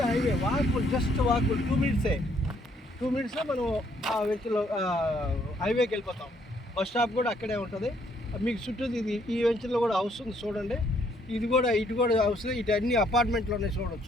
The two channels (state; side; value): normal; both; correlation 0.68